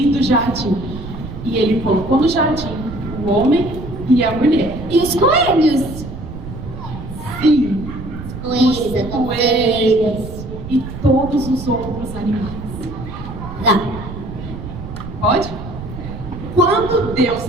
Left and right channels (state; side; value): noise; right; rumble, 10 dB below the sound